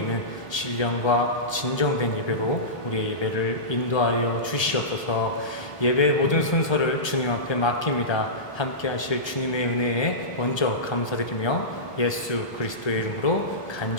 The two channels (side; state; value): right; late; 1.3 ms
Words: 신령과 진정된 예배로 우리의 예배를 인도하여 주시옵소서. 예배의 모든 순서를 주님 앞에 맡깁니다. 함께 하실 주님의 은혜에 먼저 감사드리며 예수 그리스도의 이름으로